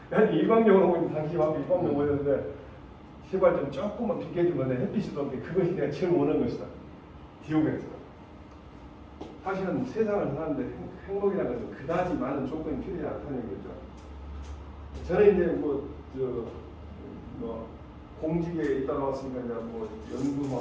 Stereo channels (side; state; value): both; identical; correlation 1.00